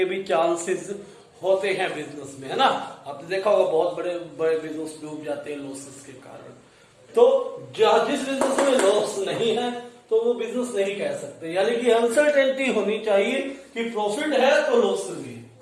भी चांसेस होते हैं बिजनेस में, है ना। आपने देखा होगा बहुत बड़े बड़े बिजनेस डूब जाते हैं लॉसेस के कारण। तो जिस बिजनेस में लॉस नहीं है तो वो बिजनेस नहीं कह सकते, यानी कि अनसर्टेनिटी होनी चाहिए कि प्रॉफिट है तो लॉस भी है,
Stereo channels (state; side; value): identical; both; correlation 1.00